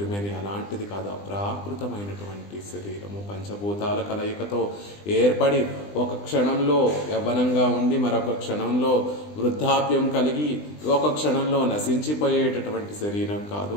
అలాంటిది కాదు, అప్రాకృతమైనటువంటి శరీరము. పంచభూతాల కలయికతో ఏర్పడి ఒక క్షణంలో యవ్వనంగా ఉండి మరొక క్షణంలో వృద్ధాప్యం కలిగి ఒక క్షణంలో నశించిపోయేటటువంటి శరీరం కాదు.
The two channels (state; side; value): late; right; 20 ms